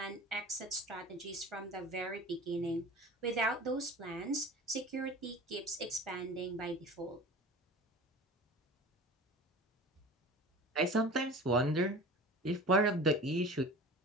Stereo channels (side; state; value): both; normal; correlation 0.38